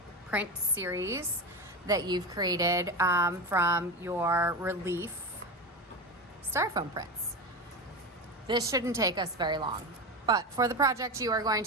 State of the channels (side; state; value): both; normal; correlation 0.21